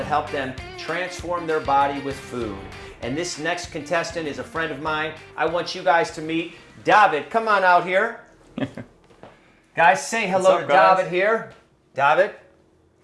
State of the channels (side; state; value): both; identical; correlation 1.00